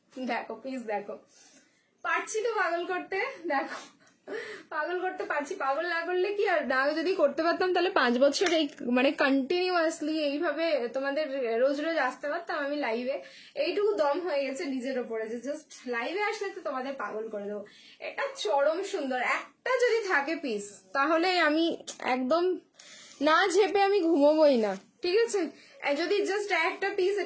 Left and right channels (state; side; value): identical; both; correlation 1.00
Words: দেখো প্লিজ দেখো, পারছি তো পাগল করতে, দেখো পাগল করতে পারছি। পাগল না করলে কি, আর না যদি করতে পারতাম তাহলে 5 বছর এই মানে কন্টিনিউয়াসলি এইভাবে তোমাদের রোজ রোজ আসতে পারতাম আমি লাইভে। এইটুকু দম হয়ে গেছে নিজের ওপরে যে জাস্ট লাইভে আসলে তো তোমাদের পাগল করে দেবো। এটা চরম সুন্দর, একটা যদি থাকে পিস তাহলে আমি একদম না ঝেপে আমি ঘুমোবই না। ঠিক আছে, যদি জাস্ট একটা পিস